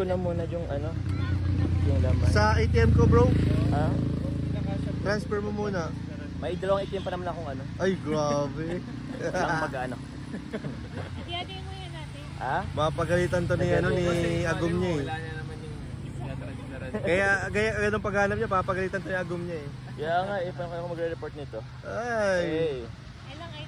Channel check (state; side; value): identical; both; correlation 1.00